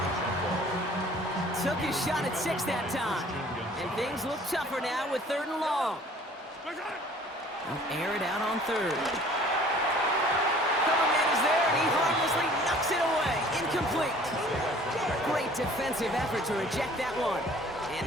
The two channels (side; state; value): both; normal; correlation 0.52